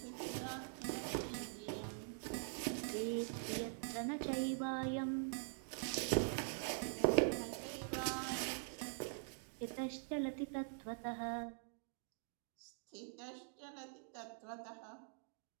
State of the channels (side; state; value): left; silent; digital silence